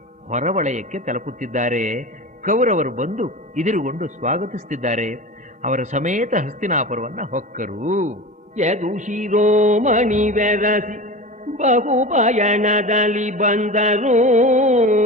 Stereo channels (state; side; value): normal; both; correlation 0.30